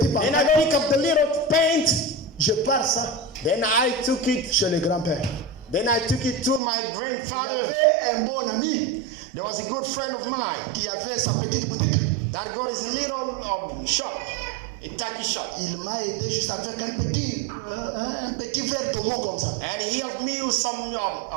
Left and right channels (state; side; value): drops out; left; at 6.6 s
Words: And I pantalon. pick up the little pants. Je pars ça Then I took it. chez le grand-père. Then I took it to my Il y grandfather. avait un bon ami There was a good friend of mine qui avait sa petite boutique. that got his little shop, a tacky shop. Il m'a aidé juste avec un petit verre d'homo comme ça. And he helped me with some